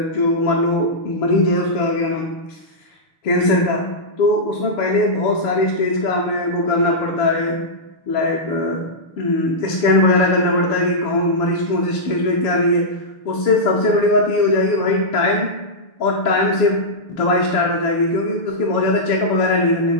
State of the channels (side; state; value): right; late; 6.7 ms